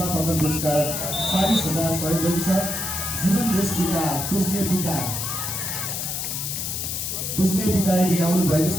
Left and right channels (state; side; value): noise; left; hiss, 3 dB below the sound